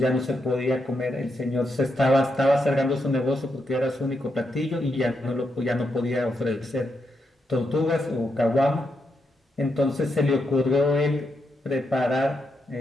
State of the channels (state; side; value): normal; both; correlation 0.83